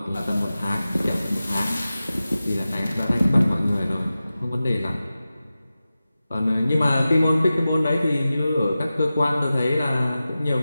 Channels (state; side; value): inverted; both; correlation -0.95